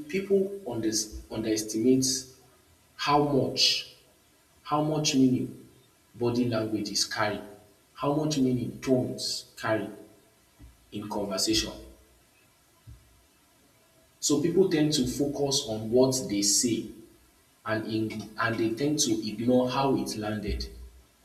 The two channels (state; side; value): identical; both; correlation 1.00